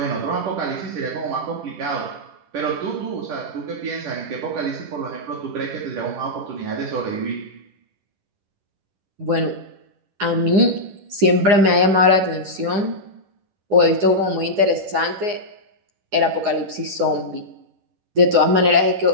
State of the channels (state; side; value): late; left; 9.7 ms